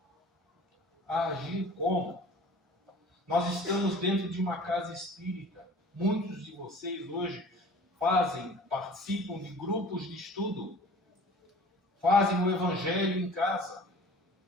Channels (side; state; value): both; normal; correlation 0.45